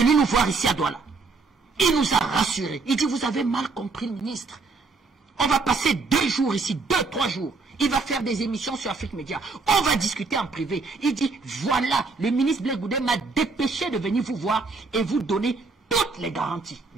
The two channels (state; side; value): quieter; left; 4.1 dB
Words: nous voir ici à Douala. Il nous a rassurés. Il dit, vous avez mal compris le ministre. On va passer 2 jours ici, 2-3 jours. Il va faire des émissions sur Afrique Média. On va discuter en privé. Il dit, voilà, le ministre Blé Goudé m'a dépêché de venir vous voir et vous donner toutes les garanties.